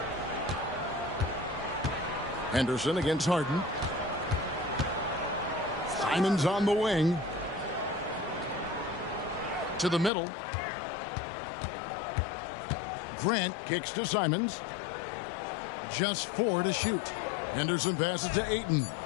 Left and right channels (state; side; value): drops out; right; at 10.1 s